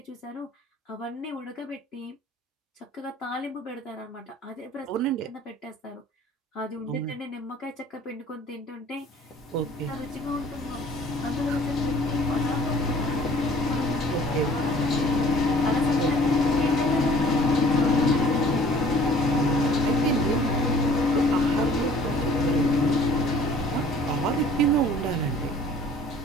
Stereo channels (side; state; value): both; normal; correlation 0.52